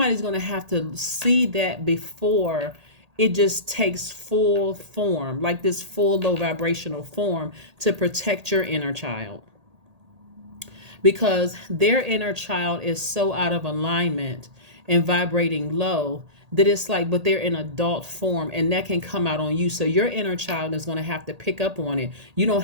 going to have to see that before it just takes full form, like this full low vibrational form, to protect your inner child. Because their inner child is so out of alignment, and vibrating low, that it's like, but they're in adult form, and that can come out on you. So your inner child is going to have to pick up on it. You don't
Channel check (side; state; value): left; late; 1.8 ms